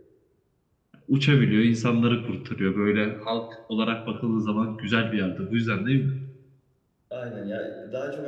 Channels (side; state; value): both; identical; correlation 1.00